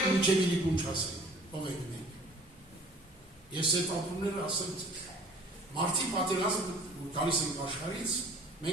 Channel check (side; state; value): both; normal; correlation 0.51